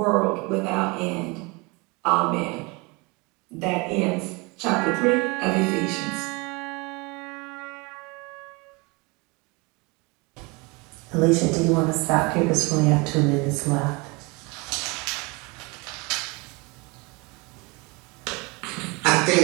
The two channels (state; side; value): quieter; left; 27.2 dB